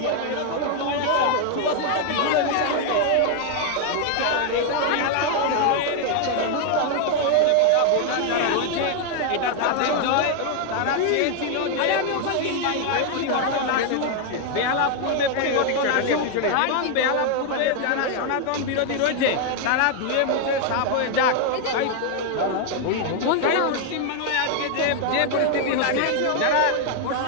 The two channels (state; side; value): different; both; correlation 0.00